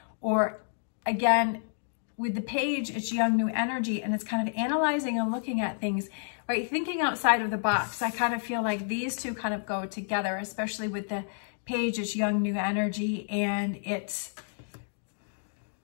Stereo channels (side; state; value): right; silent; digital silence